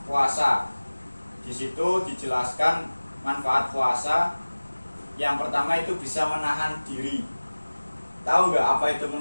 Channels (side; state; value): both; inverted; correlation -1.00